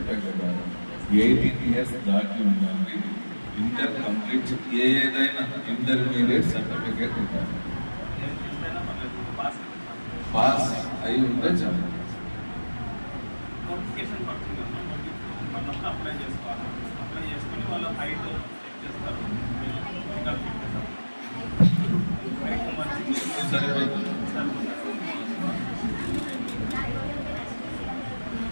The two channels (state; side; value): inverted; both; correlation -1.00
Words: కదా 18 ఇయర్స్ దాటి ఉండాలి. ఇంటర్ కంప్లీట్ ఏదైనా ఇంటర్మీడియట్ సర్టిఫికేట్ ఉండాలి. పాస్ అయి ఉంటే చాలు. నోటిఫికేషన్ పడుతుంది అన్నప్పుడు అప్లై చేసుకోవాలి. అప్లై చేసుకుని వాళ్ళ హైట్ చెక్ చేస్తారు.